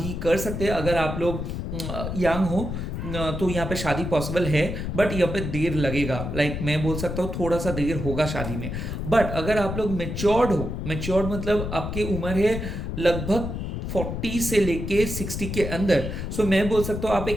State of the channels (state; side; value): noise; left; rumble, 4 dB below the sound